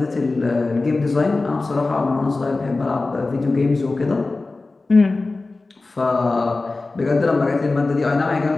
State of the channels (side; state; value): right; quieter; 3.4 dB